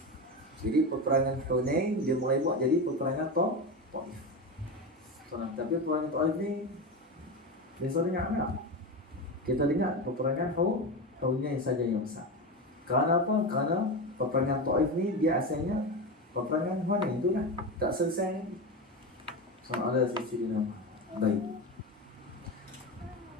Jadi peperangan Hunain dia mulai buat jadi peperangan Taif. Tapi peperangan Taif ni biasa dengar tak? Kita dengar peperangan Hunain saja yang besar. Kerana apa? Kerana peperangan Taif ni dia asalnya peperangan Hunain tu lah, tak selesai lagi. Sallallahu alaihi wasallam. Baik.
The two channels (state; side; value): normal; both; correlation 0.20